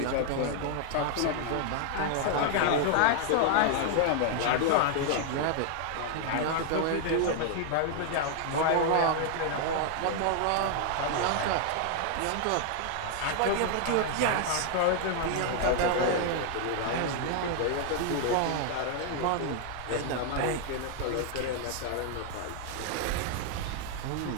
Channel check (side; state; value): both; different; correlation 0.00